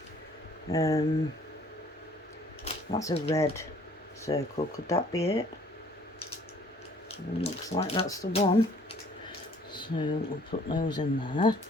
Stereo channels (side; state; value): both; normal; correlation 0.57